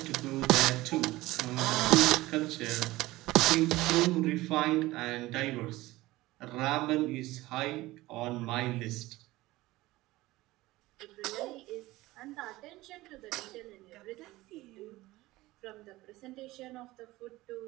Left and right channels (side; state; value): left; quieter; 18.6 dB